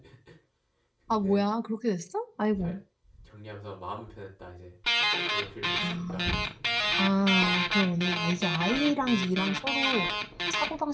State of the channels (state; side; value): identical; both; correlation 1.00